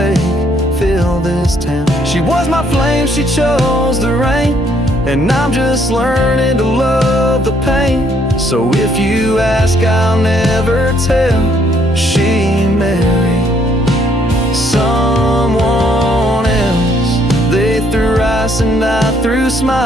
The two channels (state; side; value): normal; both; correlation 0.68